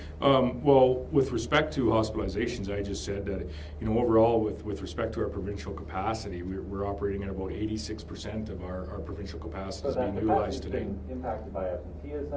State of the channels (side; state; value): both; identical; correlation 1.00